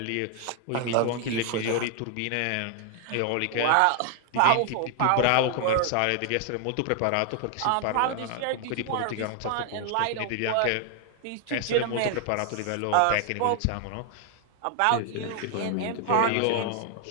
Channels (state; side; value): different; both; correlation 0.00